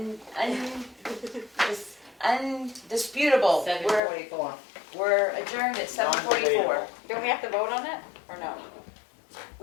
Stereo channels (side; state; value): right; drops out; at 4.0 s